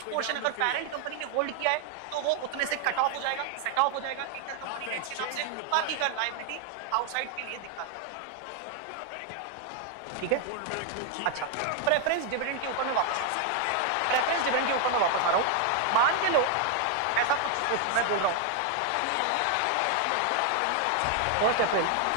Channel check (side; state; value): both; different; correlation 0.00